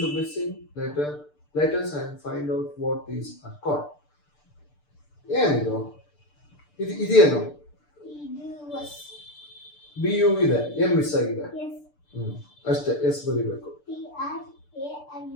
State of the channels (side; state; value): right; late; 6.8 ms